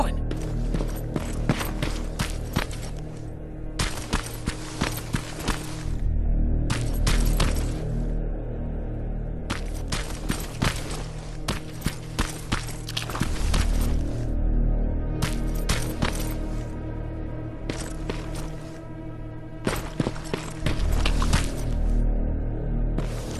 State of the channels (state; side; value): identical; both; correlation 1.00